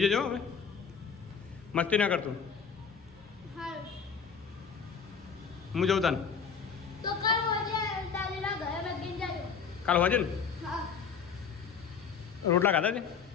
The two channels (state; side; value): quieter; right; 6.3 dB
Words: જજો હવે, મસ્તી ના કરતો. હા હું જઉં તાને તો કાલ હોજે દાદીના ઘરે બેસીને જાજો. કાલ હોજે ને હા રોટલા ખાધા છે?